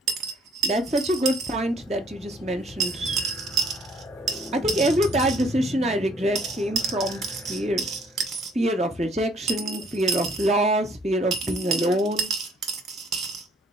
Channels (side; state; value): both; normal; correlation 0.60